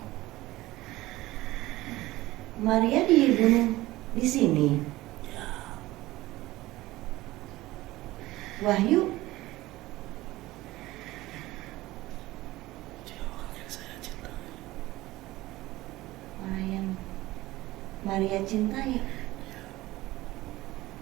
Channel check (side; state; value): left; quieter; 17.9 dB